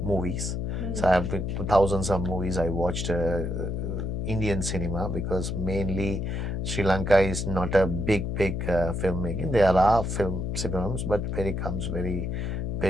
movies. So I have been to thousands of movies. I watched Indian cinema, because mainly Sri Lanka is not a big filmmaking. There are films, but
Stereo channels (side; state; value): left; noise; hum, 2 dB below the sound